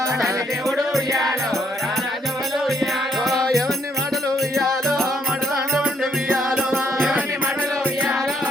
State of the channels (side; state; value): both; normal; correlation 0.72